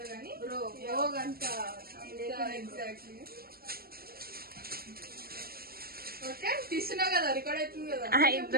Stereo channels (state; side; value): late; left; 0.44 ms